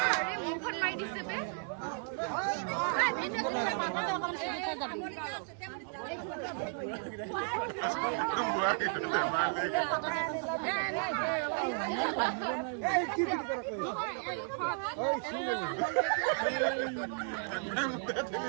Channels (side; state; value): left; silent; 55 dB below the other